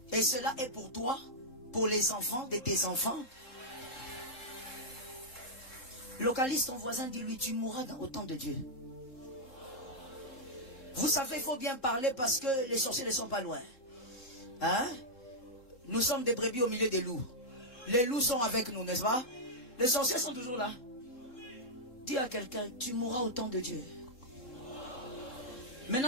Et cela est pour toi, pour les enfants de tes enfants. Localise ton voisin, dis-lui, tu mourras au temps de Dieu. Vous savez, il faut bien parler parce que les sorciers ne sont pas loin. Hein? Nous sommes des brebis au milieu des loups. Les loups sont avec nous, n'est-ce pas? Les sorciers sont toujours là. Dis à quelqu'un, tu mourras au temps de Dieu.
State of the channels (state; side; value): late; right; 3.7 ms